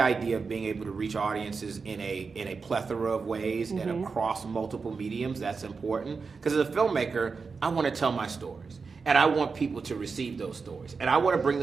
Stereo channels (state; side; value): quieter; left; 4.9 dB